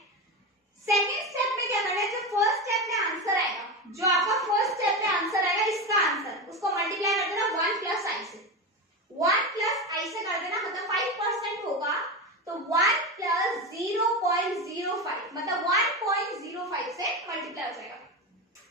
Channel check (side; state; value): both; normal; correlation 0.19